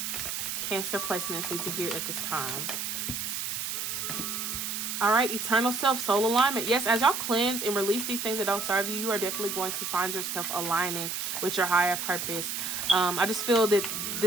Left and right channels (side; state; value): right; noise; hiss, 3 dB below the sound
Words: Cancer placements need to hear at this time? All right, eternal self, soul alignment. Yes, as y'all cleanse and release these things that don't serve you, you are definitely going to find yourself aligning with your higher purpose. I just feel that